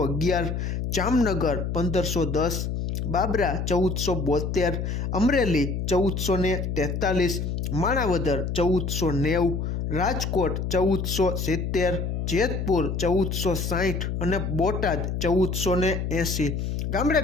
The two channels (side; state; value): left; noise; hum, 2 dB below the sound